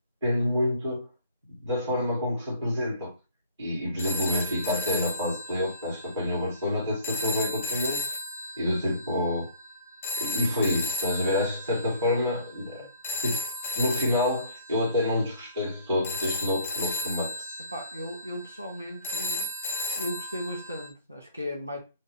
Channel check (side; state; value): both; inverted; correlation -0.57